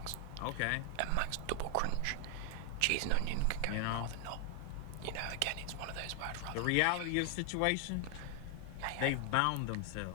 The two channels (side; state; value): both; different; correlation 0.00